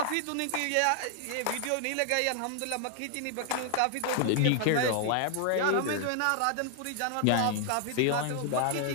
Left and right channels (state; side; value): different; both; correlation 0.00